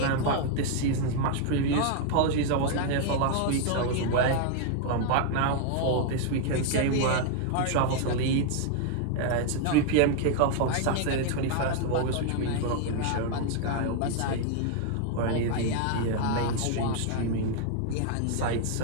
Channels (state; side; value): different; both; correlation 0.00